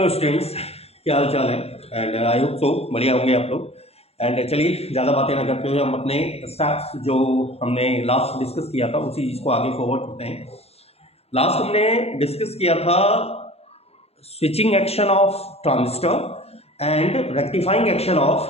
students, क्या हाल चाल है। एंड आई होप सो बढ़िया होंगे आप लोग। एंड चलिए ज़्यादा बातें ना करते हुए हम अपने स्टेप्स जो हमने लास्ट डिस्कस किया था उसी चीज़ को आगे फॉरवर्ड करते हैं। लास्ट हमने डिस्कस किया था switching action of transistor and rectifying action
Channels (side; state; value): right; late; 0.29 ms